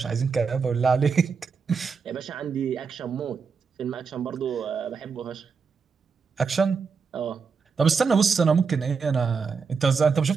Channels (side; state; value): left; quieter; 5.4 dB